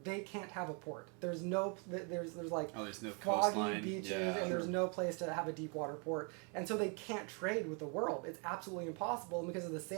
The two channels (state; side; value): quieter; left; 36.0 dB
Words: they can't have a port. There's no foggy coastline, beaches, and there's no place to have a deep water port, and so they can't trade with the world. It's absolutely impossible, and because of the